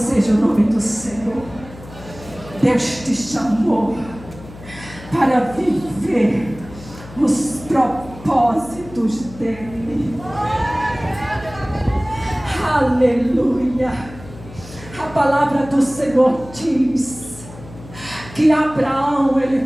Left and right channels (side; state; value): left; noise; hum, 17 dB below the sound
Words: o nome do Senhor. Deus te chamou para viver os propósitos dele. Aleluia. A palavra do Senhor diz que Abraão,